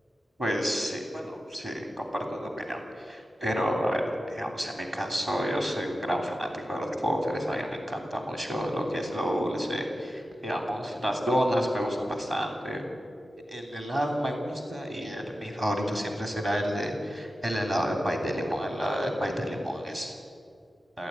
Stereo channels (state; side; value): normal; both; correlation 0.92